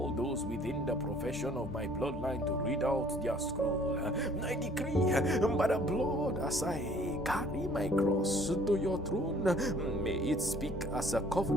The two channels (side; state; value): both; normal; correlation 0.56